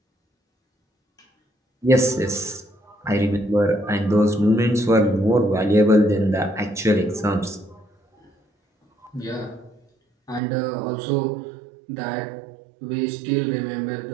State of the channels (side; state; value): left; drops out; at 10.4 s